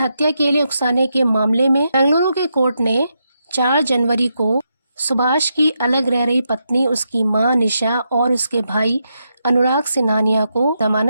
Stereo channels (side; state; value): both; inverted; correlation -0.83